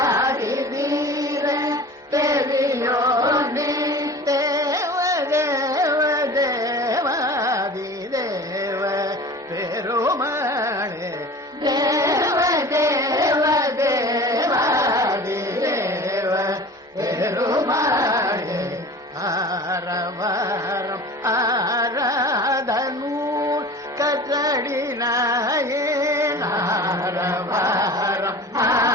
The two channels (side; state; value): both; normal; correlation 0.39